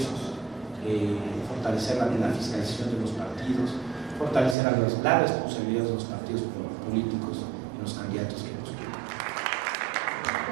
fortalecer la fiscalización de los partidos, fortalecer la responsabilidad de los partidos políticos y los candidatos que postulan.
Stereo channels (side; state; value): left; drops out; at 4.5 s